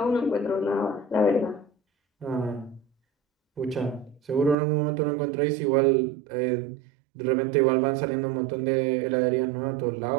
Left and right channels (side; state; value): left; drops out; at 4.5 s